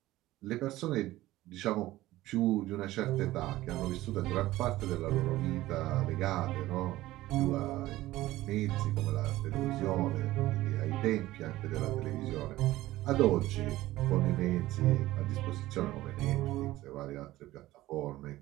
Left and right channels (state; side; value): quieter; left; 16.5 dB